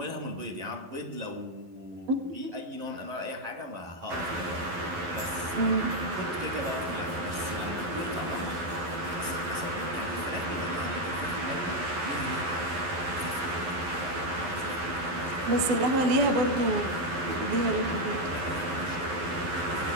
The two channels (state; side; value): late; left; 11 ms